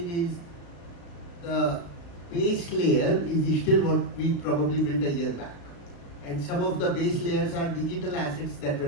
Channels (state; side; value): late; right; 35 ms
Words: is the base layer is still what we probably built a year back. And some of the base layers are digital assets that were